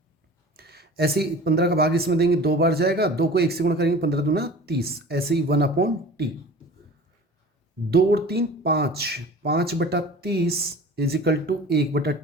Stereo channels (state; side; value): normal; both; correlation 0.41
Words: ऐसे ही 15 का भाग इसमें देंगे, 2 बार जाएगा, 2 को 1 से गुणा करेंगे, 15 दूना 30। ऐसे ही 1/t, 2 और 3 5, 5/30 इजिकल टू